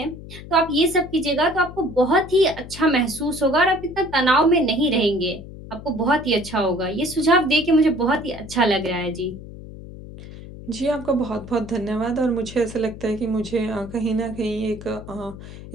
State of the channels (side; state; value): left; noise; hum, 14 dB below the sound